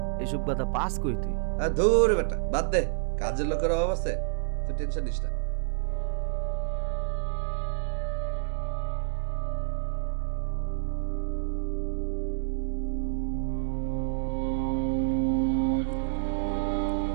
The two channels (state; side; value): silent; left; digital silence